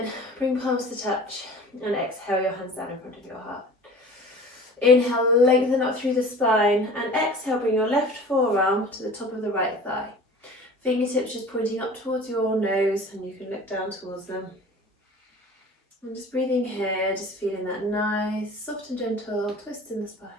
bring palms to touch, and exhale your hands down in front of your heart. Inhale, lengthen up through the spine, and exhale, bring your left forearm to the top of the right thigh. Fingertips just pointing up towards your nose, and you can look down towards them. And just breathing here, just feeling that nice, soft and gentle twist in the spine.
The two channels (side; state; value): both; normal; correlation 0.42